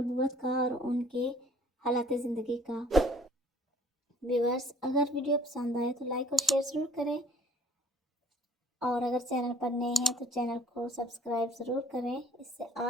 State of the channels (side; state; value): both; normal; correlation 0.55